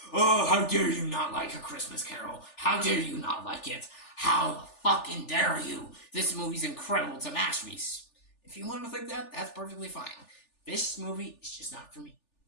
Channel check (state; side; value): late; right; 3.4 ms